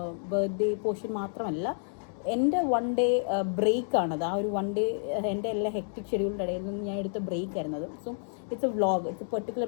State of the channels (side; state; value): right; silent; digital silence